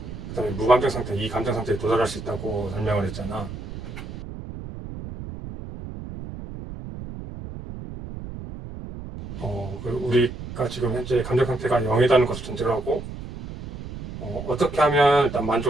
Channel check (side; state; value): right; noise; rumble, 10 dB below the sound